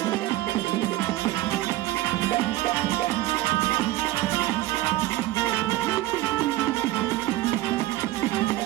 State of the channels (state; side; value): quieter; left; 16.4 dB